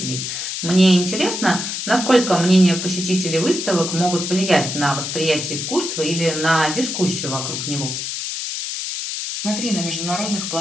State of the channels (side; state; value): left; noise; hiss, 4 dB below the sound